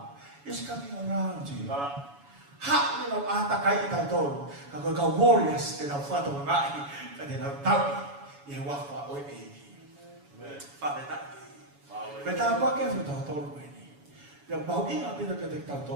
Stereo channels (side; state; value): left; late; 7.1 ms